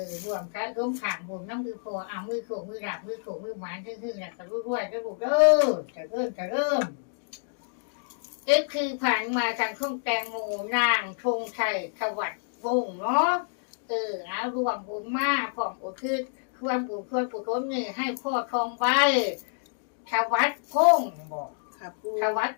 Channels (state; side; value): silent; right; digital silence